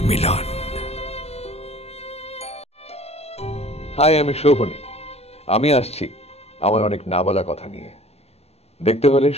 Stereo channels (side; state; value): right; late; 0.30 ms